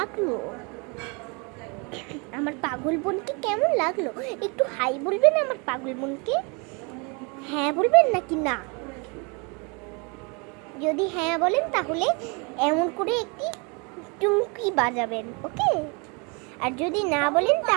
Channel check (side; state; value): left; quieter; 31.7 dB